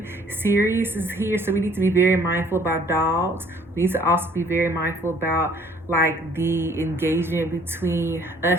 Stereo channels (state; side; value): normal; both; correlation 0.58